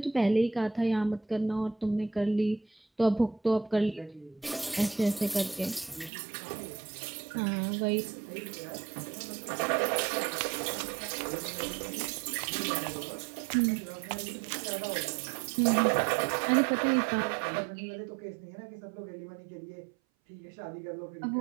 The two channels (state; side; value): drops out; left; at 6.1 s